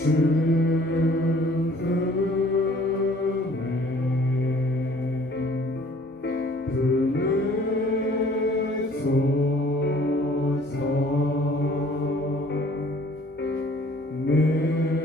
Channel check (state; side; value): normal; both; correlation 0.55